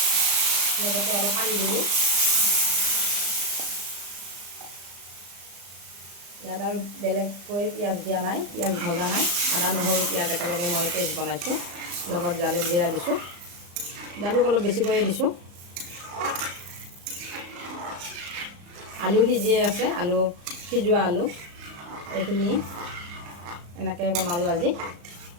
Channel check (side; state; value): left; late; 35 ms